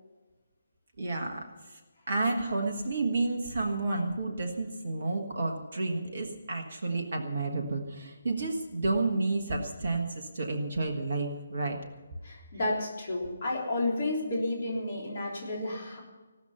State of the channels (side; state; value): both; inverted; correlation -0.83